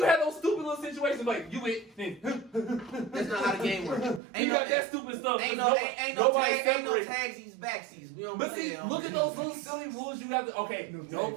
have those stupid little situations like you went. That's not how the game works. You got that stupid stuff. Ain't no tagsies, backsies. We don't but see, look at those little silly rules you have to. Okay, no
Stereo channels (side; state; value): left; drops out; at 4.2 s